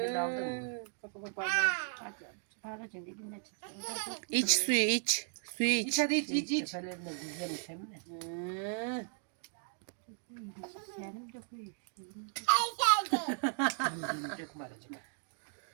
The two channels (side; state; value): left; silent; 54 dB below the other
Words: gibi aldın mı? Baba parmağım. Hadi. Bağıracaksın dibine çık. İç suyu iç. Suyu İç iç. hadi iç iç iç. Tepelerine güzelmiş hem de. Hı. Senin de koy. Dönecek mi aracık?